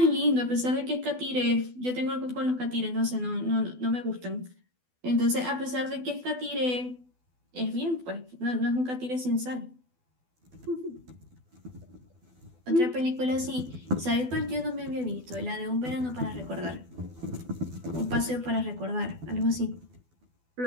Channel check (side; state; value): left; late; 12 ms